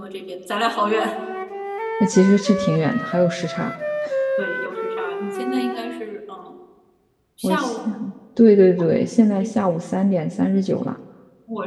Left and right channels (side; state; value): both; identical; correlation 1.00